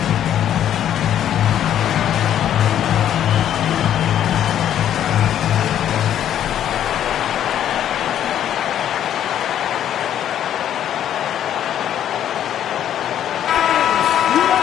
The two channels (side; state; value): right; quieter; 10.5 dB